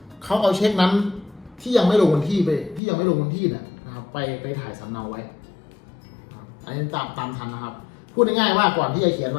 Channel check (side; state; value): right; drops out; at 2.8 s